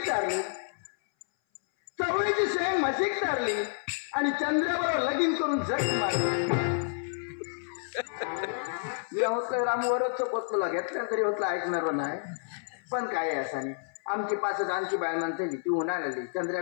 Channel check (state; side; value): silent; right; 58 dB below the other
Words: मशीक चारली आणि चंद्राबरोबर लगीन करून झट मारली मी होतलं रामवरच पोचला घेतल्या तरी होतला ऐकणार नाही पण काय आहे असानी आमची 5 आणखी बाय म्हणते ती उन्हाळा लागली चंद्र्या